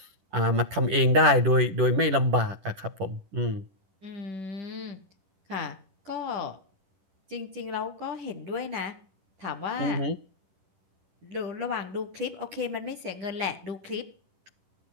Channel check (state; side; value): late; left; 10 ms